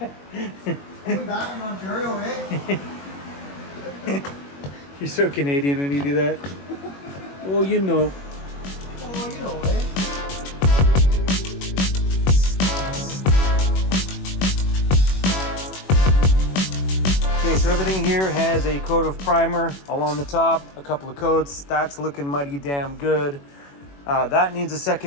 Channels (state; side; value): late; right; 21 ms